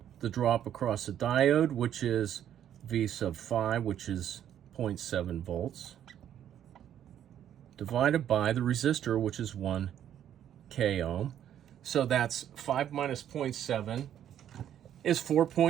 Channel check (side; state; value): left; quieter; 10.3 dB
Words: the drop across the diode, which is V sub 5, which is 0.7 volts, divided by the resistor, which is 1 k ohm. So that's 5 minus 0.7 is